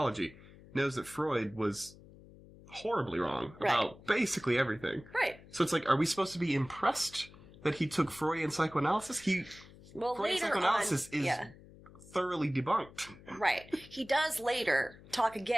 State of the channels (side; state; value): left; noise; hum, 21 dB below the sound